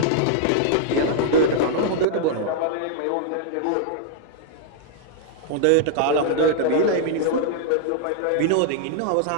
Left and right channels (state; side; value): different; both; correlation -0.01